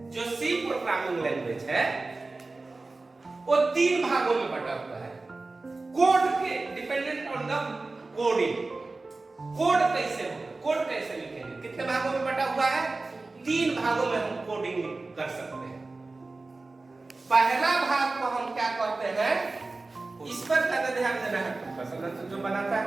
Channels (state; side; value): quieter; left; 3.4 dB